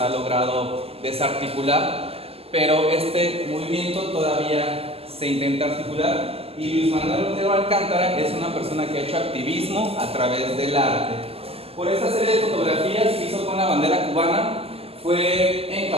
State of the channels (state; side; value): late; left; 0.29 ms